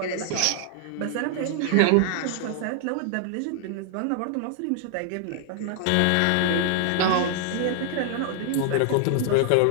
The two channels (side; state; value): both; different; correlation 0.00